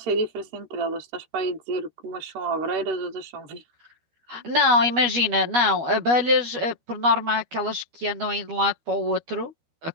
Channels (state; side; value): late; left; 12 ms